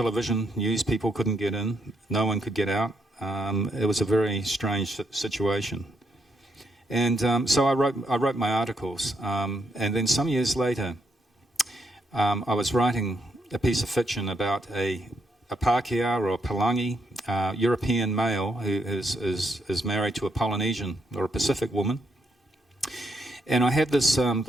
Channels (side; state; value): both; normal; correlation 0.77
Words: news people couldn't get in. No one could get out. It was a very strange situation. And so I wrote my articles, and then some years later, I was writing a piece of fiction about a Pākehā or a Palangi European male who is married to a Polynesian or a Pacific woman, and I had this